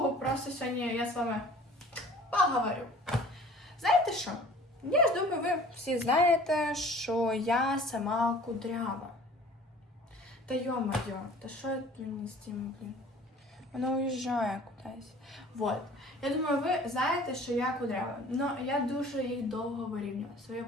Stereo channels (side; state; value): both; normal; correlation 0.48